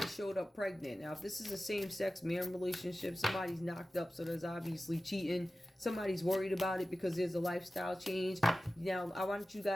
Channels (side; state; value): both; normal; correlation 0.95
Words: showed up pregnant. Now, if this is a same-sex man relationship, somebody's knocked up, so there's obviously cheating. Somebody's worried about it because there's a lifestyle change. Now, I want you